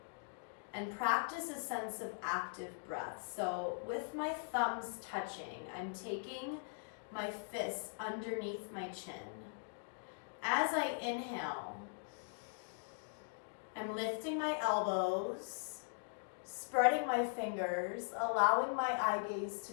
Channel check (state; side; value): silent; right; digital silence